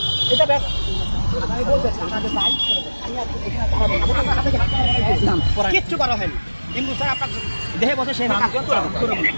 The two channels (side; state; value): both; inverted; correlation -1.00